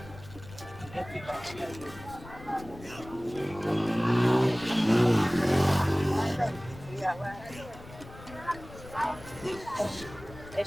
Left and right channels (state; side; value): noise; left; rumble, 17 dB below the sound